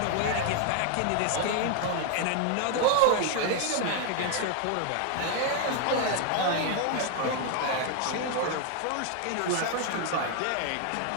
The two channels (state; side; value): different; both; correlation 0.00